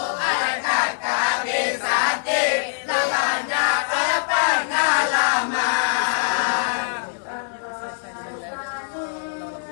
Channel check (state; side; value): silent; right; digital silence